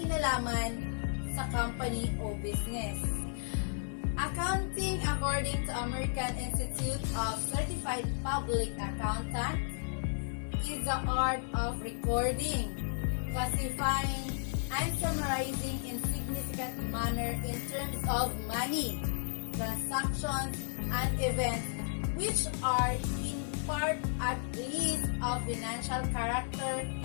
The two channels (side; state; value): right; silent; 55 dB below the other